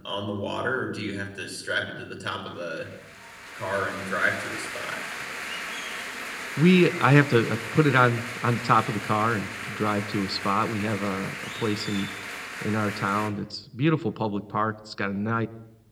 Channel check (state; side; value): identical; both; correlation 1.00